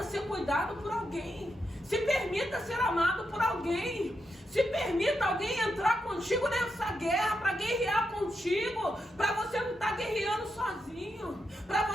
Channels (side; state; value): both; normal; correlation 0.84